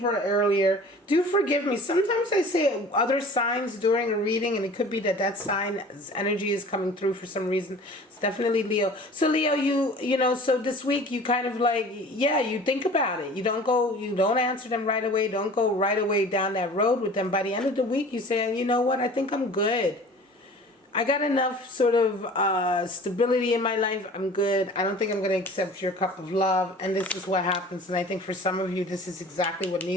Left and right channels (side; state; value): both; normal; correlation 0.44